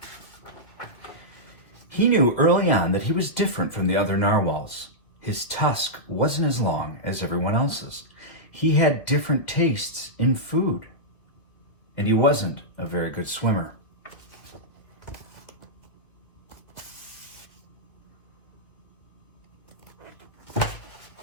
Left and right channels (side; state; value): right; late; 2.5 ms